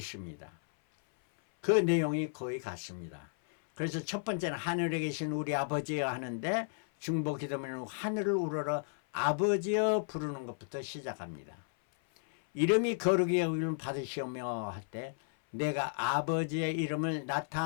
그 내용이 거의 같습니다. 그래서 첫 번째는 하늘에 계신 우리 아버지여 하는데, 중보 기도문은 하늘을 우러러 아버지여 부르는 것부터 시작합니다. 이름이 거룩히 여김을 받으시오며 할 때 내가 아버지의 이름을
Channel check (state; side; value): silent; right; 55 dB below the other